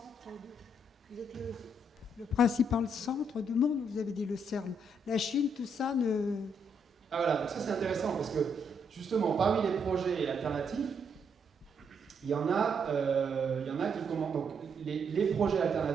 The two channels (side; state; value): both; normal; correlation 0.75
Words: vous êtes le principal centre du monde, vous avez dit le CERN. La Chine, tout ça ne... Ah voilà, donc ça c'est intéressant parce que justement, parmi les projets alternatifs, il y en a qui commencent. Donc les projets